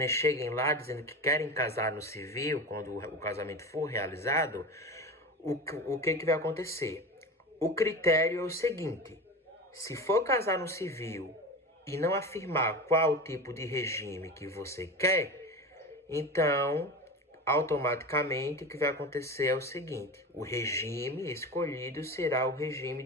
cheguem lá dizendo que querem casar no civil, quando o casamento for realizado, o que vai acontecer? O critério é o seguinte: se for casar no civil e não afirmar qual tipo de regime que você quer, então, automaticamente, o que vai acontecer é o seguinte: o regime escolhido será o regime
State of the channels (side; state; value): both; normal; correlation 0.28